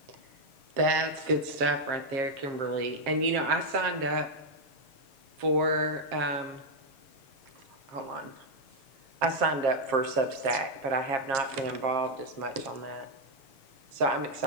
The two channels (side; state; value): left; late; 7.4 ms